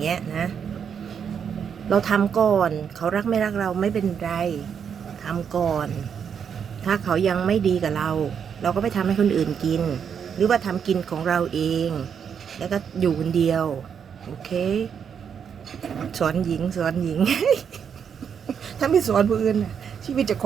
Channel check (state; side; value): quieter; left; 7.4 dB